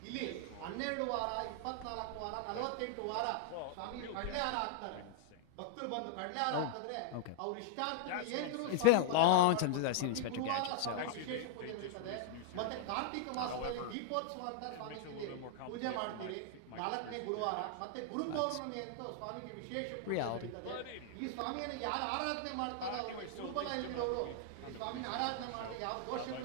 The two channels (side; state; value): both; different; correlation -0.01